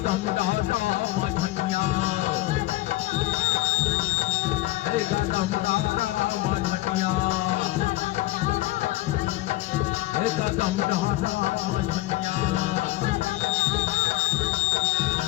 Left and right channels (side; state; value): right; quieter; 17.0 dB